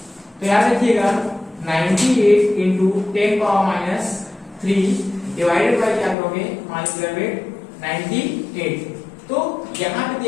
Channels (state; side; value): drops out; right; at 6.2 s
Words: तो याद रखिएगा 98 इंटू 10 पावर -3 डिवाइडेड बाय क्या करोगे, मॉलिक्यूलर वेट 98। तो यहाँ पे